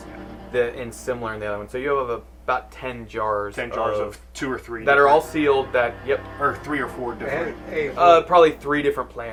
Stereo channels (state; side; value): identical; both; correlation 1.00